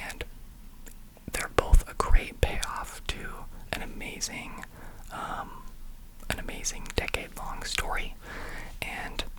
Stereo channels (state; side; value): identical; both; correlation 1.00